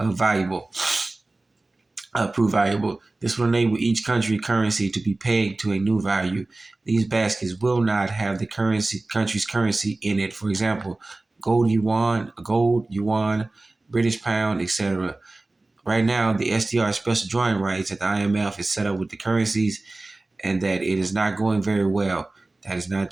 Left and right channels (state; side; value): quieter; left; 3.0 dB